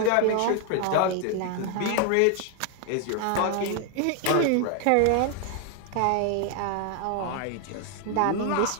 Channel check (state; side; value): different; both; correlation 0.00